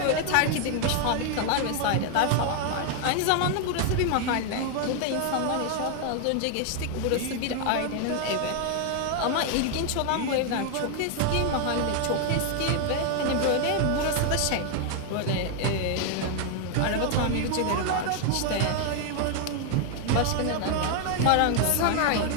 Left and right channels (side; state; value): both; different; correlation 0.00